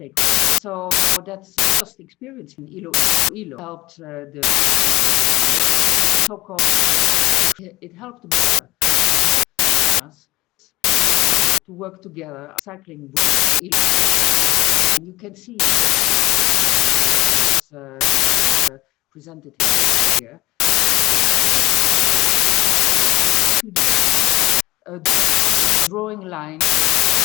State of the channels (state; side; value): quieter; right; 19.5 dB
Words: So that's just experience in Ilo helped the so-called. It helped us to work together, cycling with Ilo. And you can see presented here. A drawing line